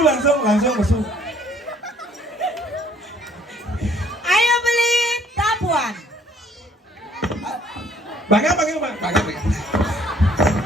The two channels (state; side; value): normal; both; correlation 0.61